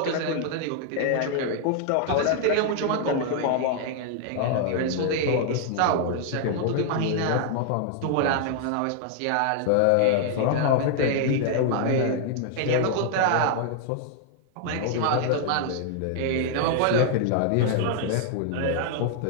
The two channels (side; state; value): both; different; correlation 0.00